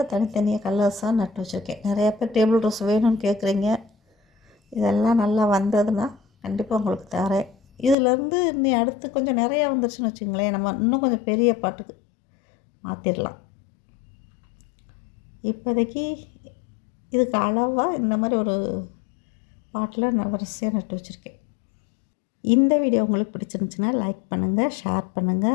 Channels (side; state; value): right; drops out; at 8.0 s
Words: தனித்தனியாக கலர்ஸாக நட்டு வச்சுருக்கேன். நிறையா பேர் டேபிள் ரோஸ் வேணும்னு கேட்குறீங்க. இதெல்லாம் நல்லா வந்ததுன்னா கண்டிப்பாக உங்களுக்கு தரேன். இதிலேருந்து நீ அடுத்து கொஞ்சம் நிறையா வந்துருச்சுன்னு வச்சுங்களேன், நம்ம இன்னும் கொஞ்சம் பெரிய பாட்டுக்கு மாற்றிடலாம். இப்போதைக்கு இதுக்கு அளவாக இந்த மாதிரி ஒரு பாட்டில் நான் வரிசையாக நட்டு வச்சுருக்கேன். இந்த வீடியோ உங்களுக்கு பிடிச்சிருந்துச்சுன்னா லைக் பண்ணுங்கள், ஷேர்